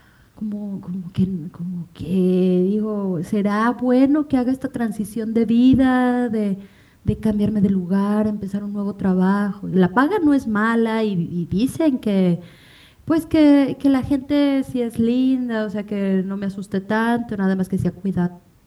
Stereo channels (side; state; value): both; identical; correlation 1.00